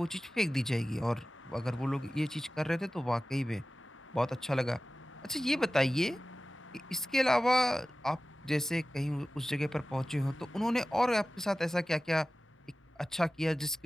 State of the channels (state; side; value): normal; both; correlation 0.96